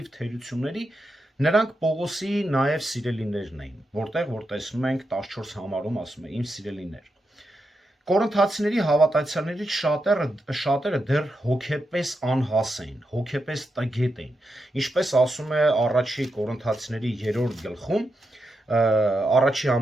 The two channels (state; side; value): normal; both; correlation 0.86